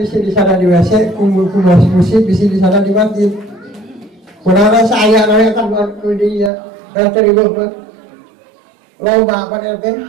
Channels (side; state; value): left; drops out; at 6.5 s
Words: di sana di WC, ku musik bisi di sana di masjid. Kurang saya nanya kan buat dia, terima kasih. Lomba apa nanti?